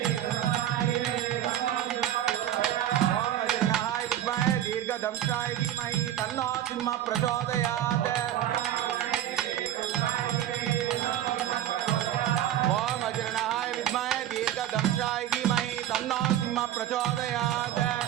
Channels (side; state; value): left; quieter; 11.7 dB